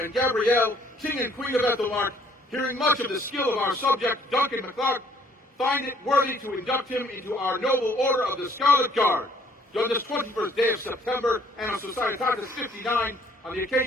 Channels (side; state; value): both; normal; correlation 0.62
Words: and Gabrielle, King and Queen of Aethelmearc, hearing much of the skill of our subject, Duncan MacLeod, find it worthy to induct him into our noble Order of the Scarlet Guard, done this 21st day of September, Anno Societatis 59, on the